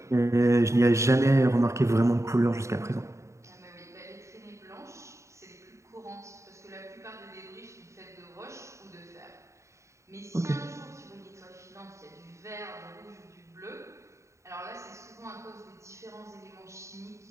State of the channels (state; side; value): late; left; 0.14 ms